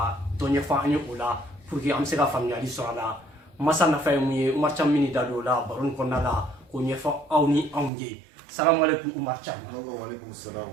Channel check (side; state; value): left; drops out; at 7.9 s